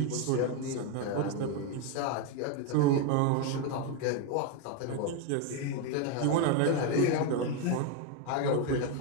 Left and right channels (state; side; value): different; both; correlation 0.02